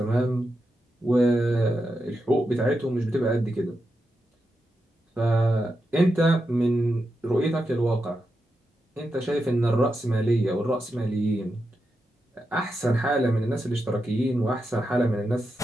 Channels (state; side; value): normal; both; correlation 0.87